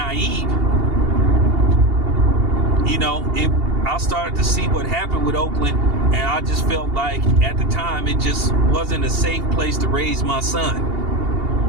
I started to see what happened with Oakland, and I just felt like at the time it just wasn't a safe place to raise my son.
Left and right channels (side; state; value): left; late; 2.8 ms